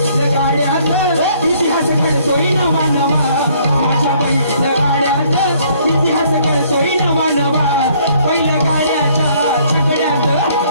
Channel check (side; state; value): both; inverted; correlation -0.63